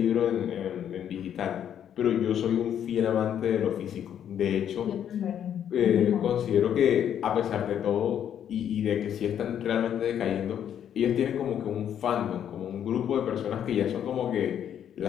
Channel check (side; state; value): right; quieter; 9.5 dB